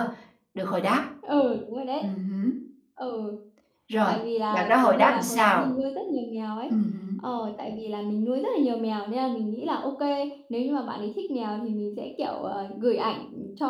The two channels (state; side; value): identical; both; correlation 1.00